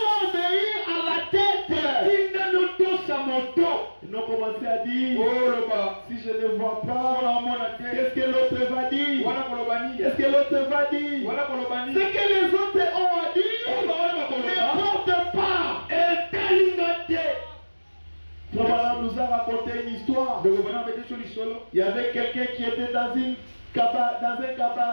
obéir à la tête. Ils ont commencé à dire, si je ne vois pas, qu'est-ce que l'autre va dire? Qu'est-ce que l'autre va dire? Ce que les autres ont à dire ne porte pas. Frère nous a raconté une histoire. Il y avait quelqu'un qui était dans un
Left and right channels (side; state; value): both; inverted; correlation -1.00